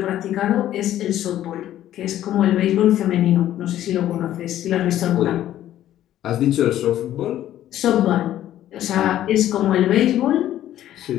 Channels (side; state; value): right; quieter; 12.6 dB